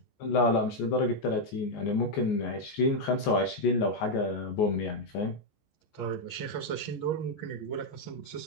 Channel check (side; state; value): right; late; 14 ms